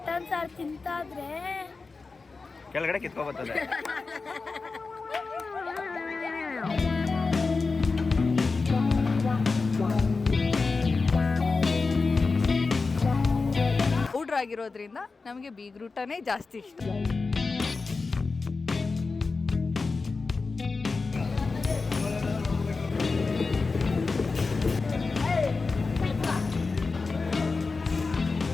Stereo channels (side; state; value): right; quieter; 4.2 dB